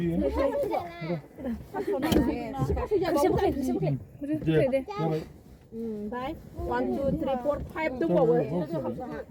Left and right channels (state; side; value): identical; both; correlation 1.00